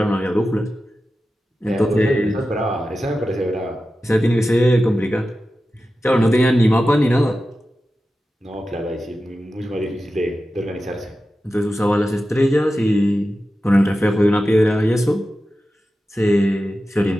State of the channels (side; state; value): both; normal; correlation 0.92